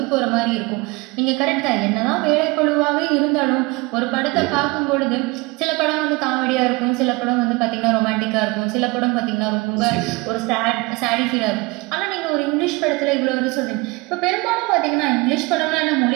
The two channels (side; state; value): left; quieter; 24.9 dB